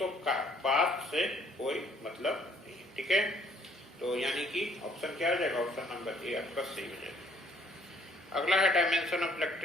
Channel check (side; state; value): both; normal; correlation 0.62